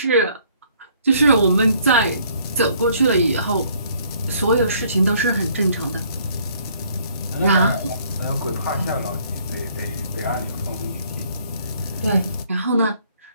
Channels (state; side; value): inverted; both; correlation -0.62